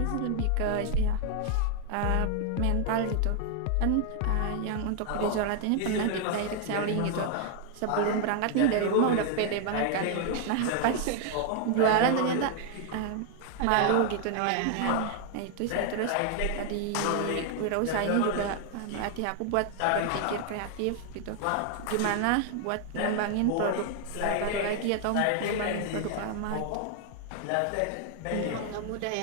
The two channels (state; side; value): different; both; correlation 0.00